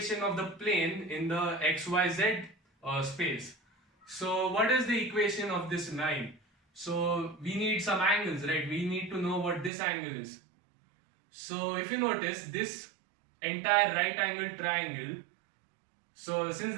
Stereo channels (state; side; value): drops out; left; at 9.7 s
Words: of the plane in the xyz space. So what is the equation of this line? So we need some angles, right? We need to know what this angle is. So if you notice, this entire right angle triangle, so since